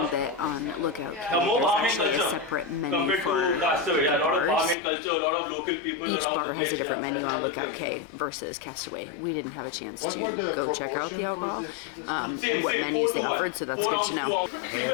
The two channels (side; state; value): right; drops out; at 4.8 s